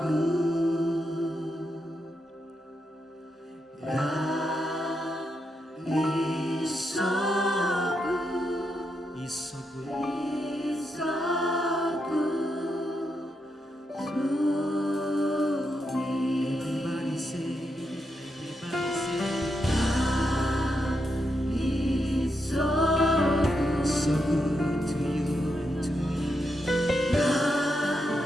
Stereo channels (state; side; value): normal; both; correlation 0.83